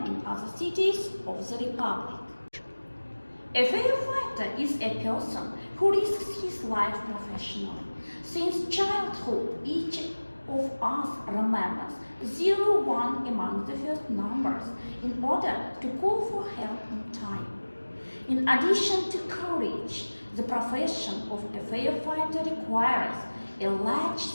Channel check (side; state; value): both; inverted; correlation -1.00